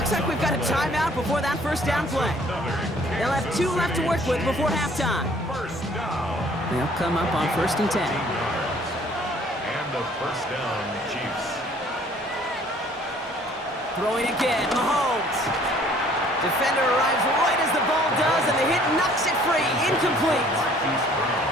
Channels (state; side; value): normal; both; correlation 0.57